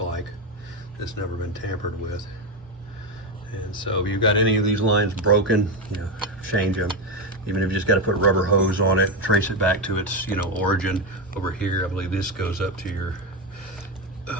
It's never been tampered with. And so if you've got any of these lines broken, change them. Even if you just got to put rubber hose on it, trace it back to its origin. Over here, I believe this goes up to your,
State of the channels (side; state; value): both; normal; correlation 0.11